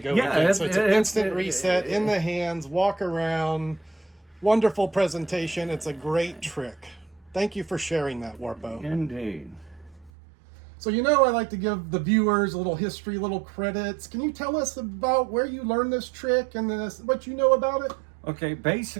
again. So it's an instant reset in the hands, walk around. Wonderful presentation. It's a great trick. Thank you for sharing that, Warpo. Indeed. So I like to give the viewers a little history, little credits. Can you tell us about where you learned this trick and what you know about it? Okay,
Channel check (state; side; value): drops out; left; at 10.1 s